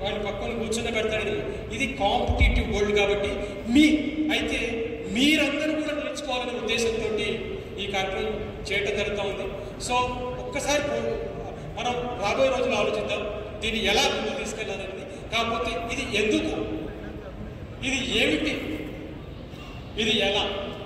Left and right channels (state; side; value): identical; both; correlation 1.00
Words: వాడు పక్కన కూర్చొని పెడతాడు. ఇది కాంపిటేటివ్ వరల్డ్ కాబట్టి అయితే మీరందరూ కూడా నేర్చుకోవాలనే ఉద్దేశంతో ఈ కార్యక్రమం చేయటం జరుగుతూ ఉంది. సో ఒక్కసారి మనం రాబోయే రోజులు ఆలోచిద్దాం దీన్ని ఎలా ముందుకు తీసుకెళ్ళాలనేది. కాకపోతే ఇది ఎందుకు, ఇది ఏమిటి, ఇది ఎలా,